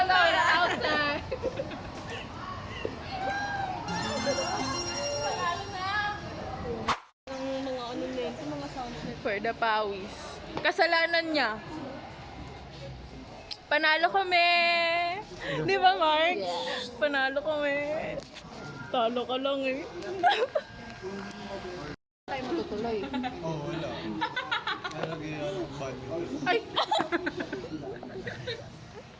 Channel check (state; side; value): identical; both; correlation 1.00